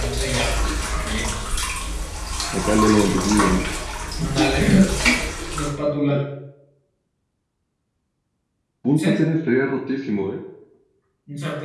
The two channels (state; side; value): identical; both; correlation 1.00